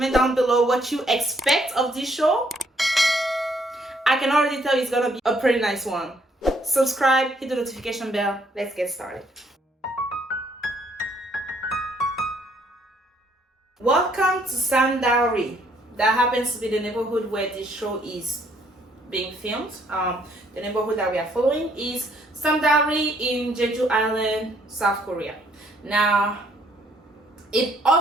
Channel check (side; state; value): both; normal; correlation 0.67